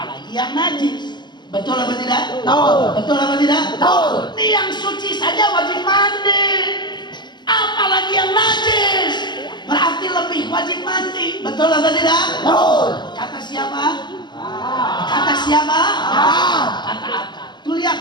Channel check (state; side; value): late; right; 0.21 ms